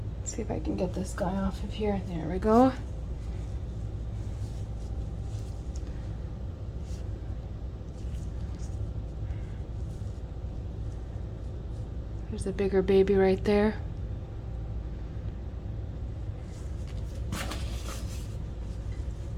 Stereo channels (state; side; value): identical; both; correlation 1.00